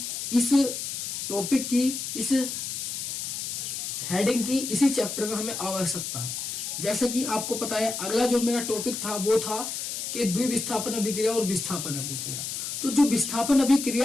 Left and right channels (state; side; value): noise; left; hiss, 4 dB below the sound